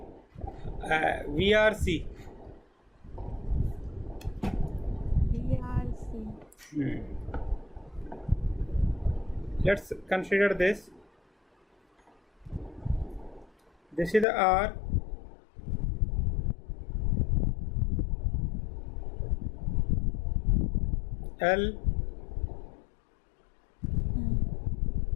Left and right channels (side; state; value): right; drops out; at 14.2 s